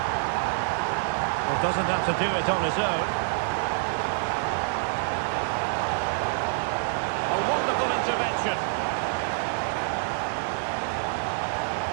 Well, doesn't have to do it on his own. Intervention.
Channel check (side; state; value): left; silent; digital silence